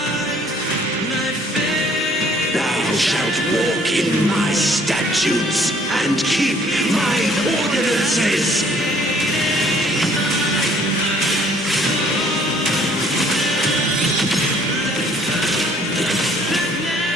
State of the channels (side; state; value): both; normal; correlation 0.59